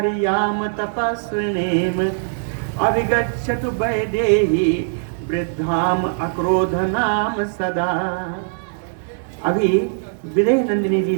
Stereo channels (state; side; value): silent; left; 65 dB below the other